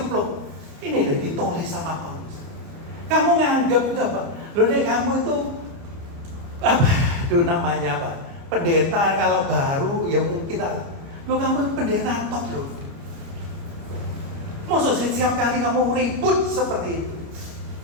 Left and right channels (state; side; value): late; left; 30 ms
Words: Ini udah ditulis sama Paulus. Kamu nganggap itu apa? Loh nih kamu itu apa? Itu namanya apa? Pendeta kalau baru ya mungkin lo kamu pendeta top loh. Maksud setiap kali kamu ribut seperti itu.